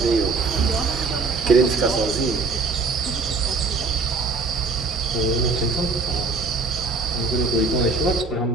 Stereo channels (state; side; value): quieter; left; 3.9 dB